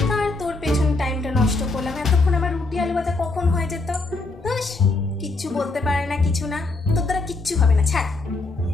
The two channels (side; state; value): right; quieter; 3.3 dB